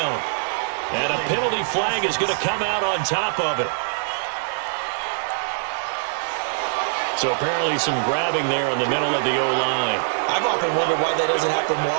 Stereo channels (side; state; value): left; silent; digital silence